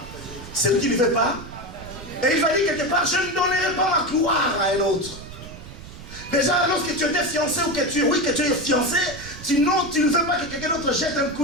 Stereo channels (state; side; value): noise; right; rumble, 14 dB below the sound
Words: C'est lui qui ne veut pas. Et il va dire quelque part, je ne donnerai pas ma gloire à un autre. Déjà, lorsque tu étais fiancé ou que tu es fiancé, tu ne veux pas que quelqu'un d'autre jette un